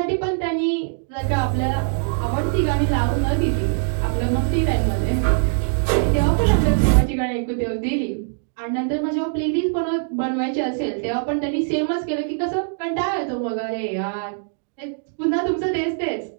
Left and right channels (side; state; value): left; silent; digital silence